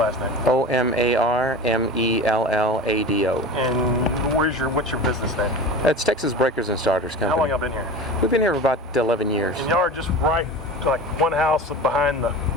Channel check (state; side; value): normal; both; correlation 0.32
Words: last name. Omarmellado. And what's your business name? It's Texas Breakers and Starters Company. How long y'all been here? We've been here for about 11 years. And y'all are just right, like one house behind the